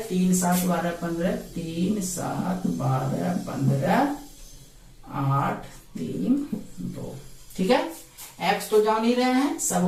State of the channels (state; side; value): identical; both; correlation 1.00